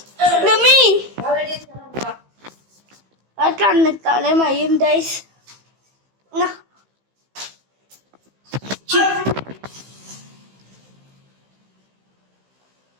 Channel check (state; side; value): late; left; 15 ms